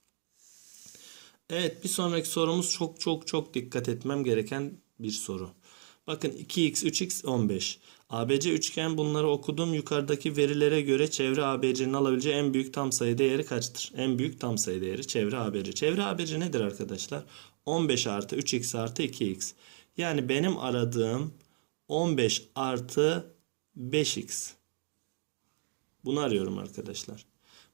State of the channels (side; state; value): left; silent; digital silence